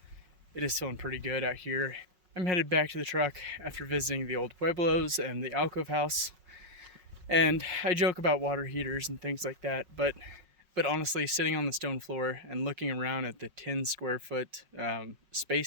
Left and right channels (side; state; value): left; late; 5.5 ms